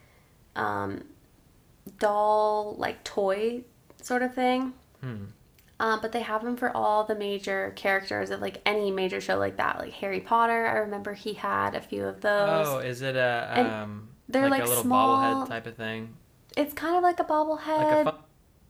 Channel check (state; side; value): identical; both; correlation 1.00